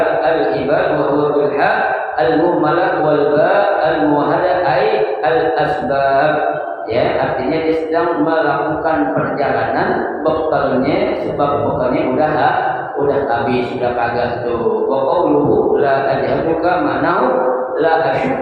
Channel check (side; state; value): both; identical; correlation 1.00